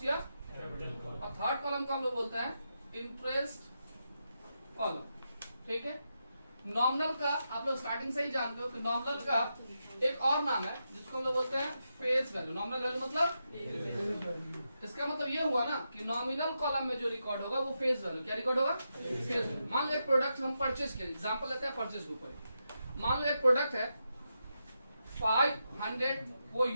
या कैपिटल। और थर्ड कॉलम को हम लोग बोलते हैं इंटरेस्ट कॉलम, ठीक है। नॉमिनल का आप लोग स्टार्टिंग से ही जानते हो कि नॉमिनल का एक और नाम है जिसको हम लोग बोलते हैं फेस वैल्यू। नॉमिनल वैल्यू मतलब, इसका मतलब ये हुआ ना कि नॉमिनल कॉलम में जो रिकॉर्ड होगा वो फेस वैल्यू, क्या रिकॉर्ड होगा, फेस वैल्यू। मान लो एक प्रोडक्ट हम परचेज किए, एग्जांपल लेते हैं परचेज के ऊपर। मान लो एक प्रोडक्ट है 500 वो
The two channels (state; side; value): inverted; both; correlation -0.86